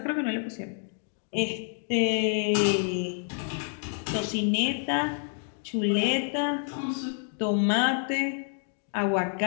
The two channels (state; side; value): silent; right; 59 dB below the other